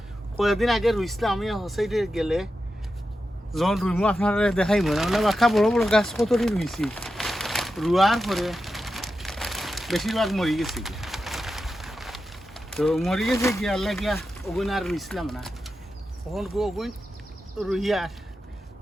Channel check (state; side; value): normal; both; correlation 0.90